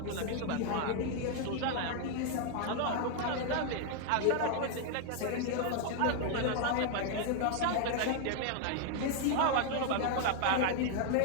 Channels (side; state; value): both; different; correlation 0.00